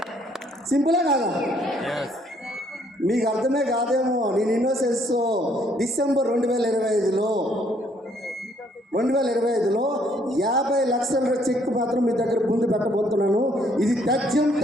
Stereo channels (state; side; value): normal; both; correlation 0.66